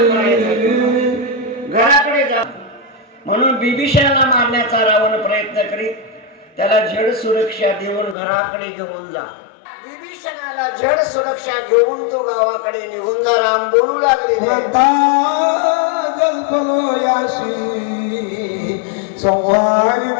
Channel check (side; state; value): right; drops out; at 8.2 s